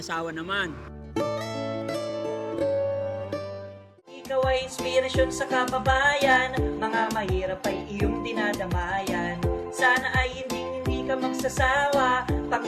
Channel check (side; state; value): both; identical; correlation 1.00